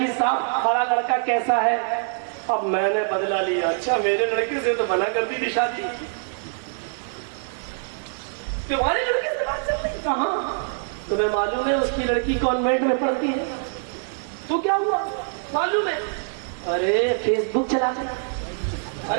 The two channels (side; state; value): left; silent; digital silence